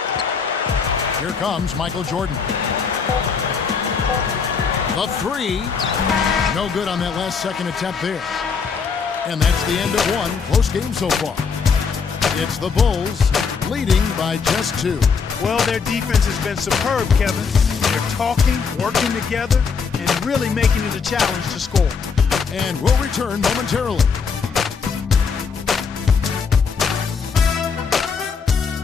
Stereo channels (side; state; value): right; quieter; 5.7 dB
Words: Here comes Michael Jordan. The three. No good on that last second attempt there. And that's the end of one. Close game so far. It's the Bulls leading by just 2. Well, their defense has been superb, Kevin. They're talking, working together, and really making it a challenge to score. And we'll return momentarily.